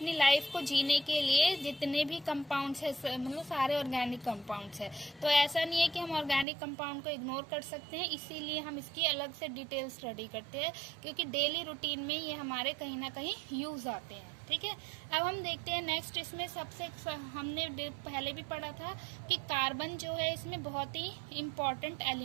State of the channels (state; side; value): drops out; left; at 6.5 s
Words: लाइफ को जीने के लिए जितने भी कंपाउंड्स है, मतलब सारे ऑर्गेनिक कंपाउंड्स है। तो ऐसा नहीं है कि हम ऑर्गेनिक कंपाउंड को इग्नोर कर सकते हैं, इसीलिए हम इसकी अलग से डिटेल स्टडी करते हैं, क्योंकि डेली रूटीन में ये हमारे कहीं ना कहीं यूज आते हैं। ठीक है, अब हम देखते हैं नेक्स्ट। इसमें सबसे हमने पहले भी पढ़ा था कि कार्बन जो है इसमें बहुत ही इंपॉर्टेंट